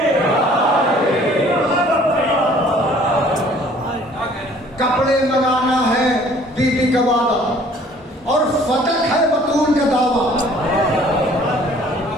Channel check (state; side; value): normal; both; correlation 0.55